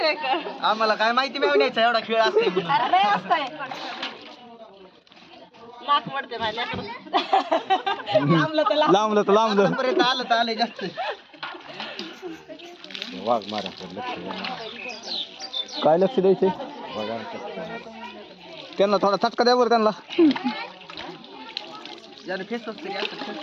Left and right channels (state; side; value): identical; both; correlation 1.00